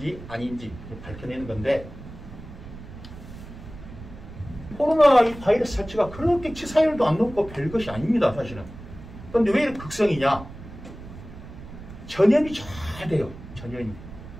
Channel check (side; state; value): right; noise; rumble, 14 dB below the sound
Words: 아닌지 밝혀내는 건데 코로나 이 바이러스 자체가 그렇게 치사율도 안 높고 별것이 아닙니다. 사실은. 그런데 왜 이렇게 극성이냐? 전염이 잘 돼요. 전염이.